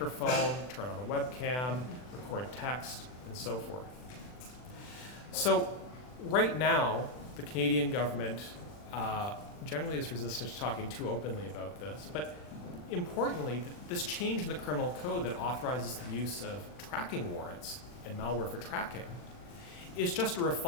turn on a webcam, record text, and so forth. So right now, the Canadian government generally is resistant to talking too openly about this, but importantly, this change in the criminal code that authorizes the use of tracking warrants and malware for tracking is just a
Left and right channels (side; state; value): right; late; 40 ms